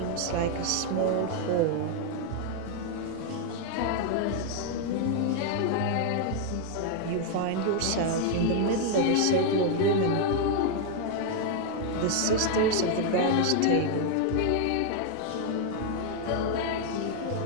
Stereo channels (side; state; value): both; different; correlation 0.00